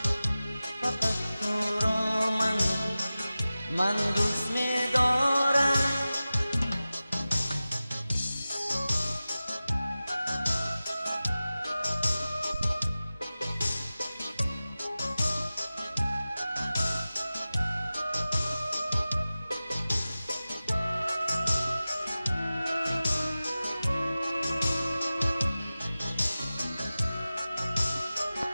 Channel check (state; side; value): inverted; both; correlation -0.96